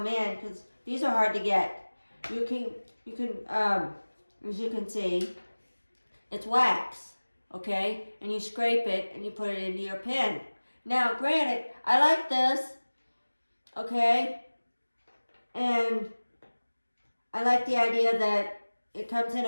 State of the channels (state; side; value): inverted; both; correlation -1.00